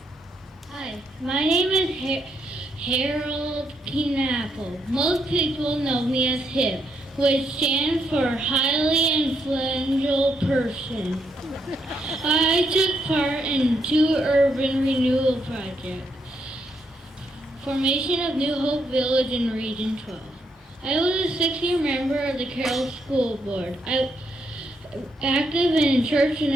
My name is Harold Knappel. Most people know me as HIP, which stands for Highly Influential Person. I took part in 2 urban renewal projects. Formation of New Hope Village in Region 12. I was a 6-year member of the Carroll School Board. I active in Church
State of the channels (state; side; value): normal; both; correlation 0.77